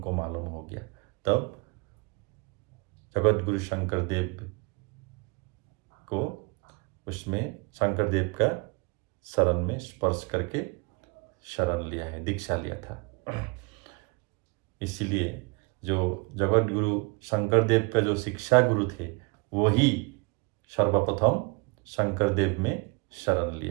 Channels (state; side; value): quieter; left; 29.5 dB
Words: मालूम हो गया। तब जगत गुरु शंकरदेव को उसमें शंकरदेव का शरण में स्पर्श करके शरण लिया है, दीक्षा लिया था। इसीलिए जो जगत गुरु शंकरदेव का जो शिक्षा गुरु थे वही सर्वप्रथम शंकरदेव में शरण